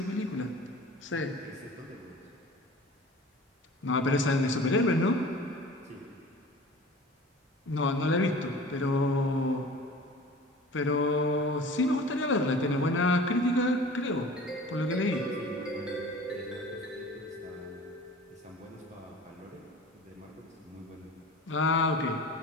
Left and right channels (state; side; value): normal; both; correlation 0.42